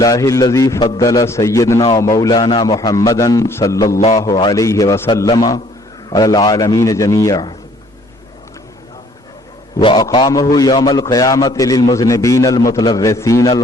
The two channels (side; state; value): both; normal; correlation 0.59